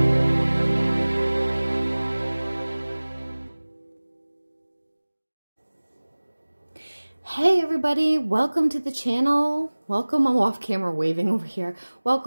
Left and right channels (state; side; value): inverted; both; correlation -1.00